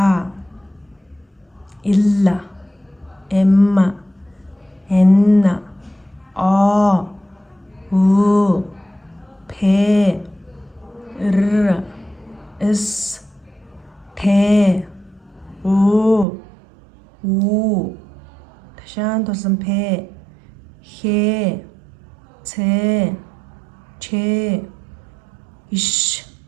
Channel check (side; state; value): left; drops out; at 16.2 s